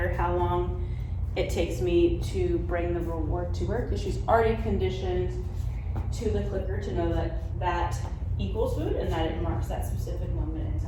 how long it takes me to bring the reward to her because she's already conditioned to the clicker to know that that equals food and that it marks that specific moment in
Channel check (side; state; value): both; identical; correlation 1.00